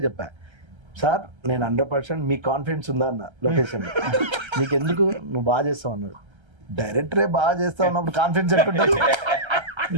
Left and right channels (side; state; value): left; late; 1.3 ms